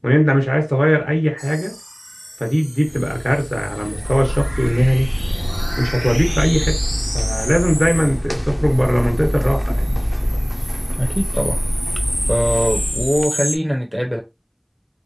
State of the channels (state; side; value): identical; both; correlation 1.00